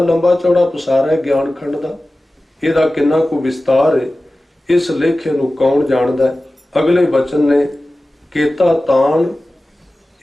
ਲੰਬਾ ਚੌੜਾ ਪਸਾਰ ਹੈ ਗਿਆਨ ਖੰਡ ਦਾ, ਇਹਦਾ ਕਿੰਨਾ ਕੁ ਵਿਸਤਾਰ ਹੈ, ਇਸ ਲੇਖੇ ਨੂੰ ਕੌਣ ਜਾਣਦਾ ਹੈ। ਅਗਲੇ ਬਚਨ ਨੇ ਕੇਤਾ ਤਾਣ,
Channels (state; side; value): normal; both; correlation 0.96